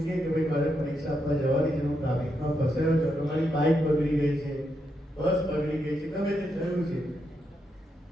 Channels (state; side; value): normal; both; correlation 0.82